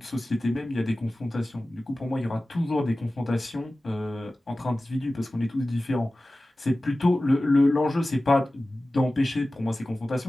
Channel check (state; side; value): normal; both; correlation 0.96